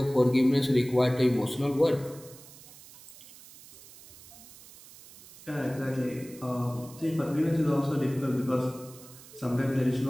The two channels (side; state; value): right; noise; hiss, 20 dB below the sound